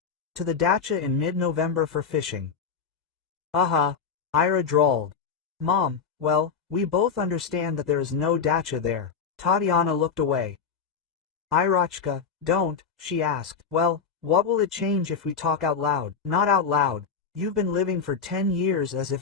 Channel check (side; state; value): right; quieter; 6.1 dB